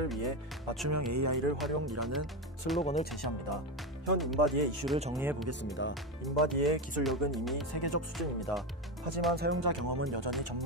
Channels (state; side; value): normal; both; correlation 0.15